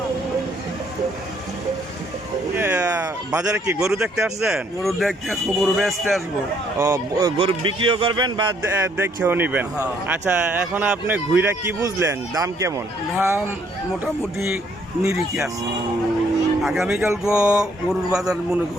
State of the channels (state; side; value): normal; both; correlation 0.67